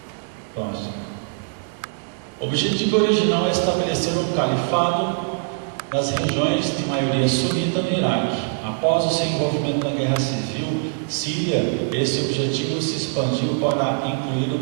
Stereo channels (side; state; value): left; silent; digital silence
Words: Próximo. O objetivo original é estabelecer um califado nas regiões de maioria sunita no Iraque. Após o seu envolvimento na guerra civil síria, esse objetivo se expandiu para incluir